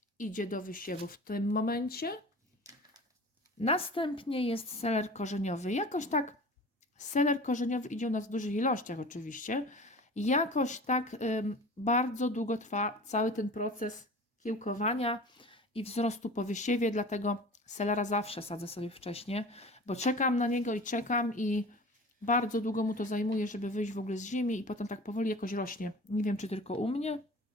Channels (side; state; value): both; normal; correlation 0.39